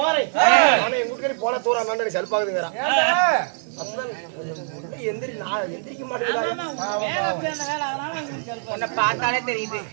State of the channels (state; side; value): silent; left; digital silence